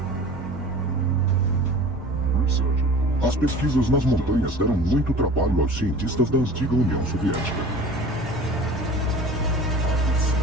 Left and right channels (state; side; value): normal; both; correlation 0.41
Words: As pesquisas nas montanhas deram muito trabalho aos cientistas da antiga União Soviética.